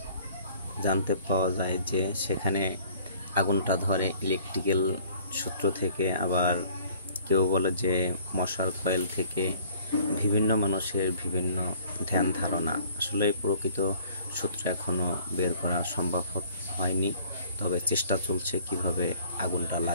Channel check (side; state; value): both; inverted; correlation -0.54